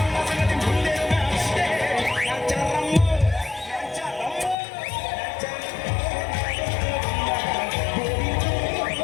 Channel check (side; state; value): right; drops out; at 4.5 s